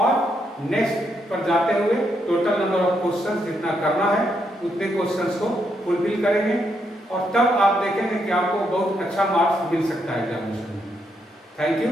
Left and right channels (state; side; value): normal; both; correlation 0.78